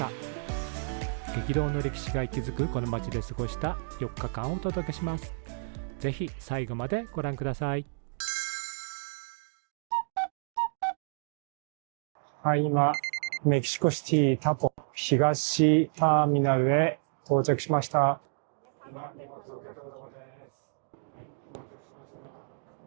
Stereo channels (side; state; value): left; silent; digital silence